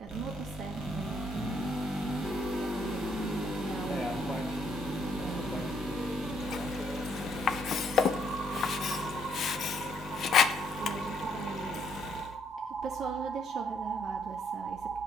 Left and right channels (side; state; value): both; normal; correlation 0.70